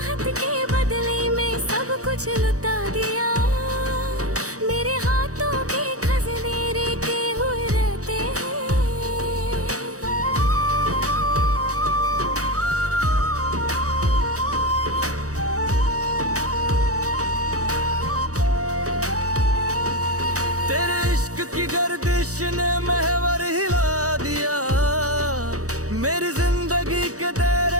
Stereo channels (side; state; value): left; late; 0.66 ms